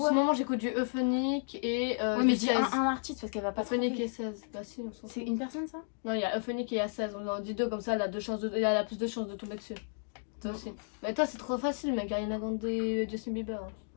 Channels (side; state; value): right; silent; digital silence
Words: moment, j'écoute du Euphonique et Ouais, mais du dis 16. un artiste parce qu'elle va pas Euphonique trouver. et 16. Bah, si, on s'en fout. C'est une personne ça? Non, il y a Euphonique et il y a 16. On en dit deux comme ça, elle a, elle a plus de chances de tomber dessus. Toi aussi. Mais toi, c'est trop facile, mec. Ariana Grande et Justin Bieber. Hein.